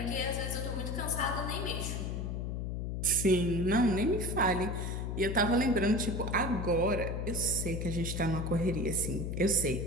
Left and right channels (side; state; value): left; noise; hum, 3 dB below the sound